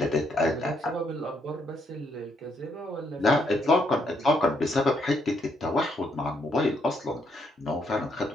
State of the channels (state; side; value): normal; both; correlation 0.74